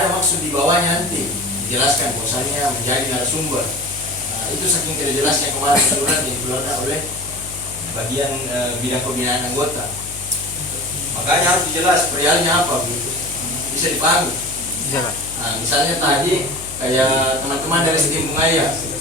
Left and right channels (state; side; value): noise; left; hum, 16 dB below the sound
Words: maksud di bawahnya, nanti dijelaskan bahwasannya menjadi narasumber. Nah, itu saking tidak jelasnya kemarin surat yang dikeluarkan oleh bagian bidang pembinaan anggota. Makanya harus dijelas perihalnya apa begitu, bisa dipahami. Nah, misalnya tadi kayak teman-teman dari Sistem